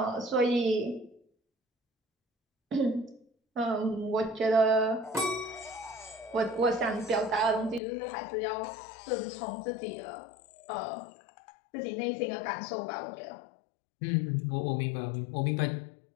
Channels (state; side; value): drops out; right; at 7.8 s